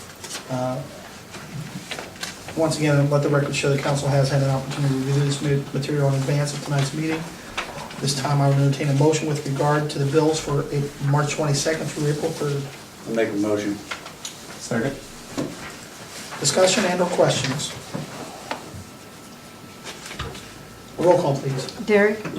Once again, let the record show the council has had an opportunity to review this material in advance of tonight's meeting. This time I would entertain a motion with regard to the bills for March 22nd through April 3rd. I'll make a motion. Second? Discussion and/or questions? Roll call, please. Derek?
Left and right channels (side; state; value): both; identical; correlation 1.00